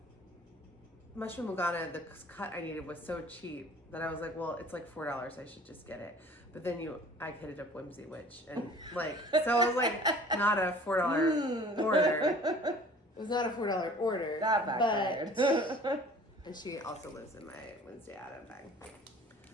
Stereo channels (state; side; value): normal; both; correlation 0.48